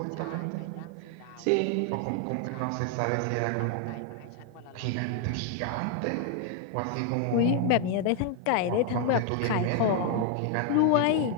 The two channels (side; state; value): both; different; correlation 0.00